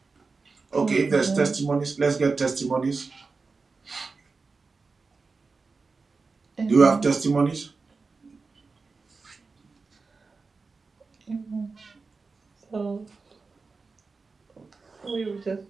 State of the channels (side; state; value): left; quieter; 4.3 dB